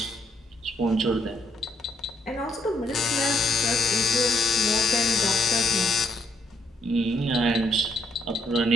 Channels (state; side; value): normal; both; correlation 0.72